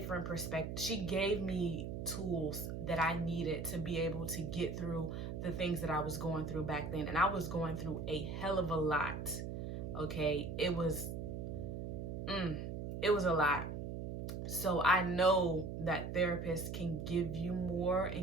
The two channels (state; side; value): noise; right; hum, 5 dB below the sound